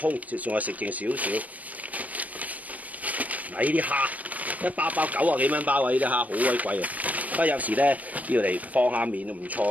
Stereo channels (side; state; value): left; late; 0.072 ms